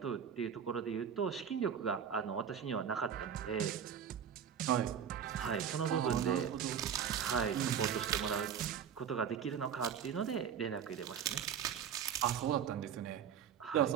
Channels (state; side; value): quieter; left; 8.2 dB